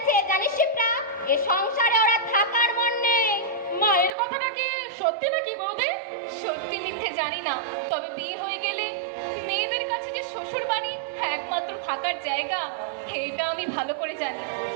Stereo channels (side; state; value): left; drops out; at 4.1 s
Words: জানিস শিপ্রা, এ সংসারে ওরা থাকার মন নেই। মায়ের কথাটা কি সত্যি নাকি বৌদি? সত্যি মিথ্যে জানি না, তবে বিয়ে হয়ে গেলে মেয়েদের কাছে যে শ্বশুর বাড়ি একমাত্র থাকার জায়গা, এটা আমি ভালো করে জানি।